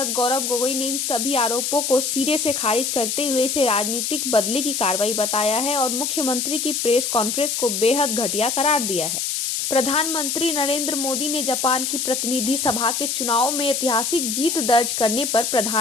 गौरव गोगोई ने इन सभी आरोपों को सिरे से खारिज करते हुए इसे राजनीतिक बदले की कार्रवाई बताया है और मुख्यमंत्री की प्रेस कॉन्फ्रेंस को बेहद घटिया करार दिया है। प्रधानमंत्री नरेंद्र मोदी ने जापान की प्रतिनिधि सभा के चुनाव में ऐतिहासिक जीत दर्ज करने पर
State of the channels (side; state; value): left; noise; hiss, 1 dB below the sound